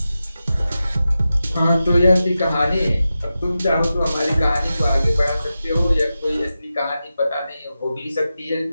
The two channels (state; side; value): inverted; both; correlation -0.92